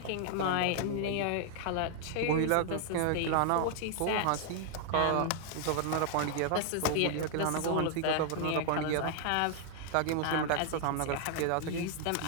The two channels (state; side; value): different; both; correlation 0.00